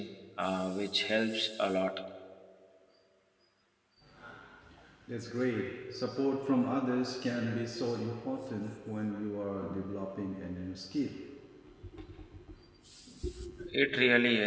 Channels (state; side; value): identical; both; correlation 1.00